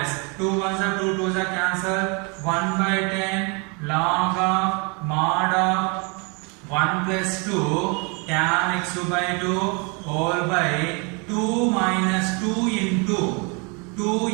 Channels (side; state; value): left; quieter; 32.3 dB